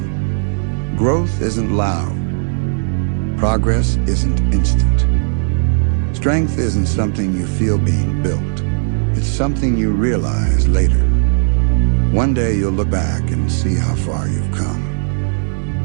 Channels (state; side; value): silent; left; digital silence